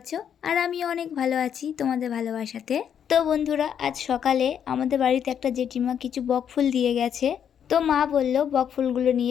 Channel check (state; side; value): quieter; right; 8.5 dB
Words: আর আমি অনেক ভালো আছি তোমাদের ভালোবাসাতে। তো বন্ধুরা, আজ সকালে আমাদের বাড়িতে একটা জেঠিমা কিছু বকফুল দিয়ে গেছে। তো মা বললো বকফুলগুলো